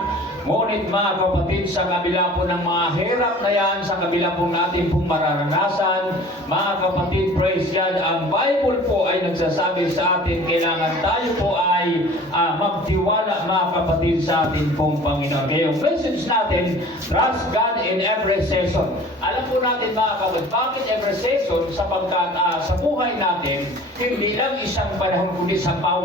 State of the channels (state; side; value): normal; both; correlation 0.45